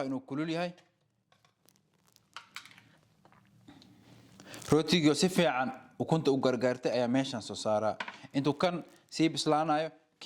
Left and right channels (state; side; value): identical; both; correlation 1.00